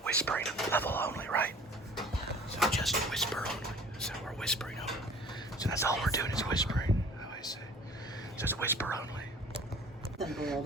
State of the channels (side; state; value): both; normal; correlation 0.48